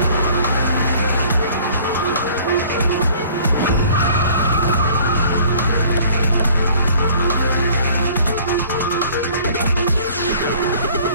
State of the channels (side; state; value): both; inverted; correlation -0.52